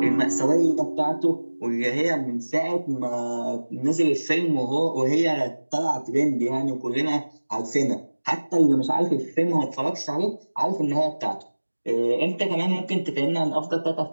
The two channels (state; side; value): inverted; both; correlation -1.00